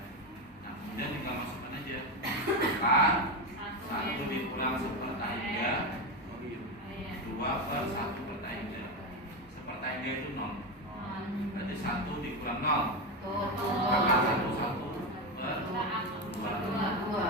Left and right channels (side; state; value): both; normal; correlation 0.14